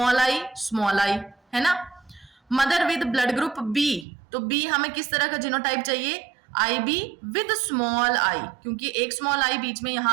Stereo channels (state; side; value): drops out; left; at 4.0 s